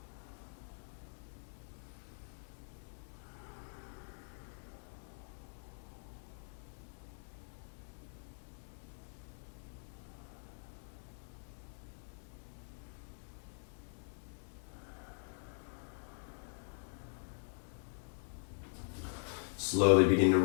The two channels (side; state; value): right; silent; digital silence